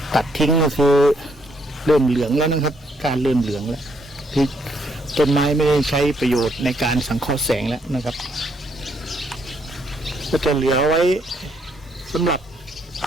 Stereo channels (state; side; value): normal; both; correlation 0.72